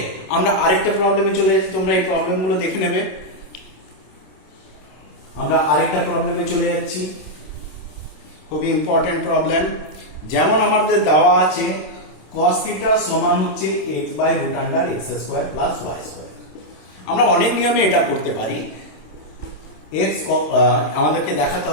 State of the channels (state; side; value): late; right; 27 ms